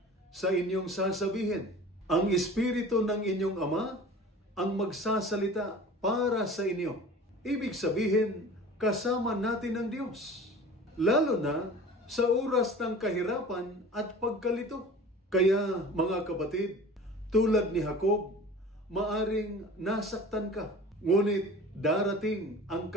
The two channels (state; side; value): normal; both; correlation 0.41